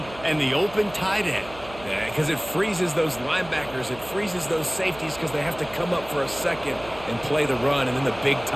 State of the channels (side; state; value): right; noise; hum, 18 dB below the sound